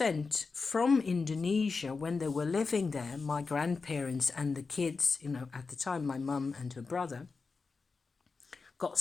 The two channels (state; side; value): quieter; right; 4.5 dB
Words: from Indonesia when they were living there, my grandparents and the kids, you know, at the time, my mum and her brother, got